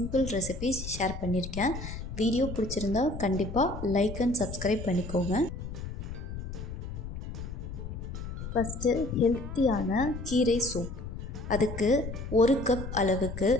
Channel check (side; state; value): left; noise; rumble, 8 dB below the sound